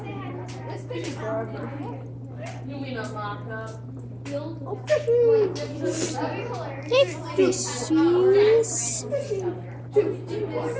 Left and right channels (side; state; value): both; identical; correlation 1.00